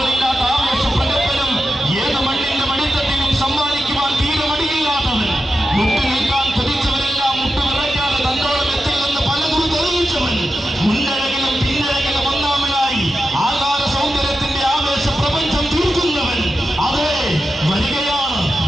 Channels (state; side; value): normal; both; correlation 0.90